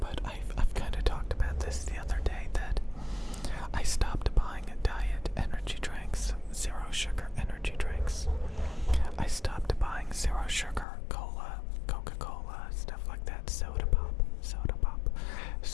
I've kind of talked about this the other day that I stopped buying diet energy drinks, zero sugar energy drinks. I stopped buying zero sugar cola, Coca-Cola, stuff like that, soda pop.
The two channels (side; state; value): right; drops out; at 10.9 s